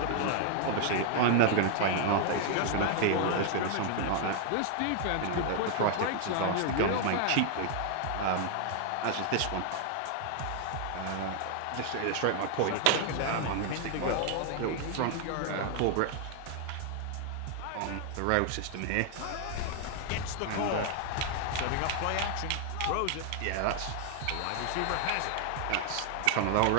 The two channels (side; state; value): both; different; correlation 0.00